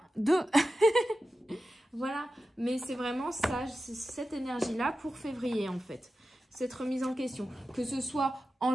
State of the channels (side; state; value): both; normal; correlation 0.93